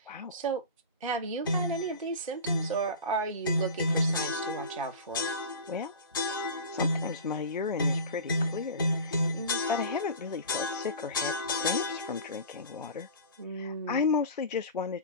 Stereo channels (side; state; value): both; inverted; correlation -0.32